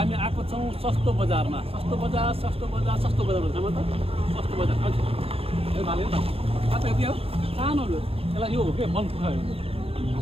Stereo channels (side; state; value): left; late; 0.28 ms